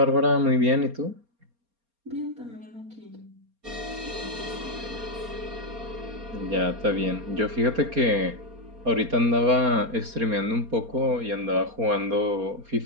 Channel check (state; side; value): late; left; 4.3 ms